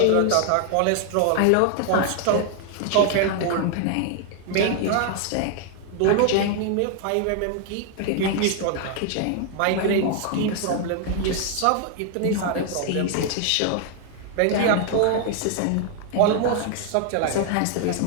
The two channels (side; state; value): both; different; correlation 0.00